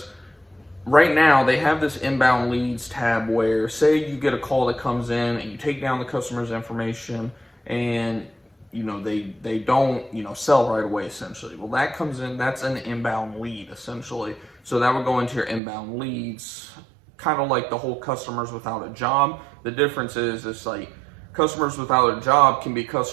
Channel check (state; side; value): drops out; left; at 15.6 s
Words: right now they have this inbound leads tab where, say you get a call that comes in and you take down the customer's information and they don't sell right away essentially. Well, that comes in, that's an inbound lead essentially. So that would go into your inbound leads, kind of like the whole customers without a job. The difference is it's like customers without a job can be